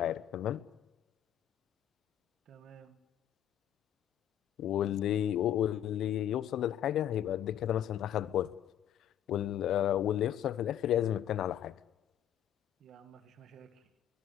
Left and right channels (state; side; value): quieter; right; 10.8 dB